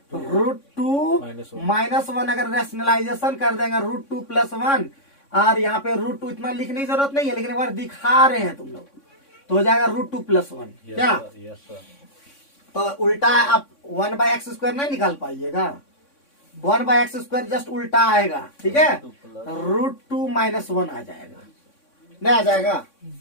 -1। अगर रैशनलाइजेशन कर देंगे √2 + 1, और यहाँ पे √2 इतना लिखने की जरूरत नहीं है, लेकिन एक बार दिखा रहे हैं तुम लोग, तो हो जाएगा √2 + 1। क्या यस सर। तो उल्टा आप 1/x² नहीं निकाल पाइएगा, 1/x² जस्ट उल्टा आएगा, ठीक है, √2 - 1 आ जाएगा, नहीं आ जाएगा,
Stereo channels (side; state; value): right; late; 3.6 ms